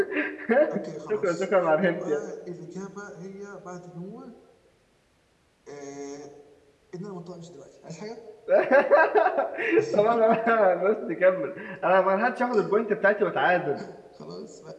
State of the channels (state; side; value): identical; both; correlation 1.00